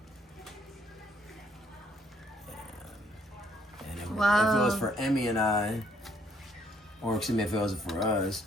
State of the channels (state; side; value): normal; both; correlation 0.67